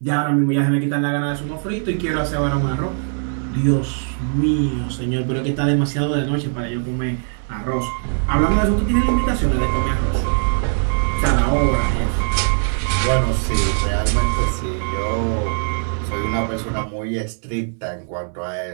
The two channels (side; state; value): left; silent; digital silence